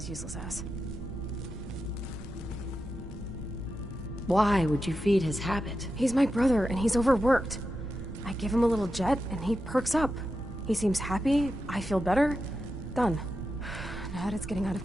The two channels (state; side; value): normal; both; correlation 0.89